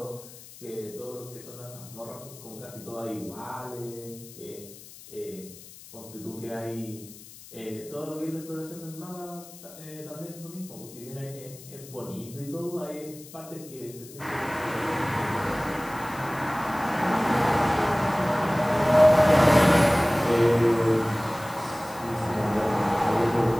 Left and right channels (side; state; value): left; noise; hiss, 18 dB below the sound